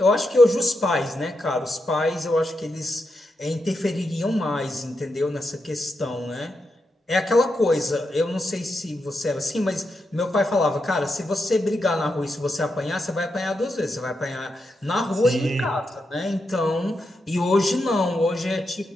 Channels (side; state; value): both; normal; correlation 0.85